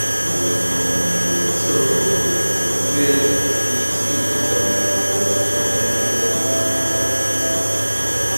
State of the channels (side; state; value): both; inverted; correlation -1.00